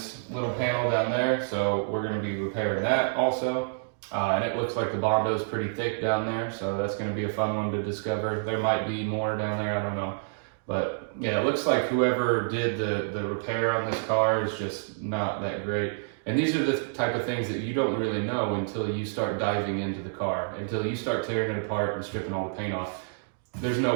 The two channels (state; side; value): silent; left; digital silence